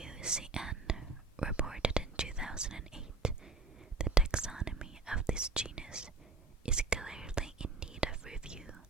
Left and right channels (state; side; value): quieter; left; 3.7 dB